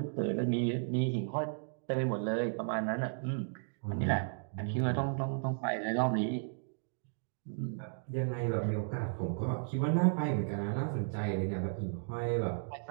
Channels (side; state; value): left; silent; digital silence